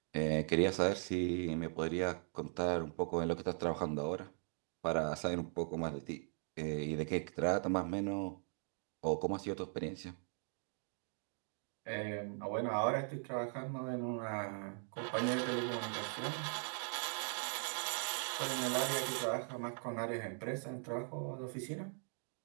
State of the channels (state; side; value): silent; left; 51 dB below the other